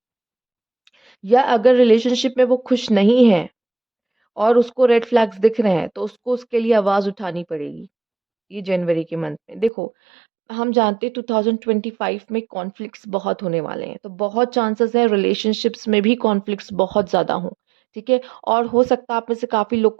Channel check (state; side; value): drops out; left; at 9.7 s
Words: या अगर रिलेशनशिप में वो खुश नहीं है और उसको रेड फ्लैग्स दिख रहे हैं, तो उसको उसके लिए आवाज उठानी पड़ेगी। ये जनवरी के मंथ में देखो, हम जानते हैं 2025 में कॉन्फ्लिक्ट्स बहुत होने वाले हैं, तो बहुत चांसेस है रिलेशनशिप्स में भी कॉन्फ्लिक्ट्स बहुत ज़्यादा हों, ठीक है? और हो सकता है आप में से काफ़ी लोग